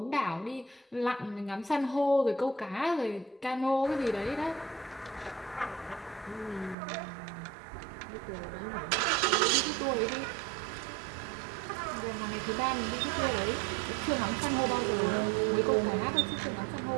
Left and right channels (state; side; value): drops out; left; at 6.8 s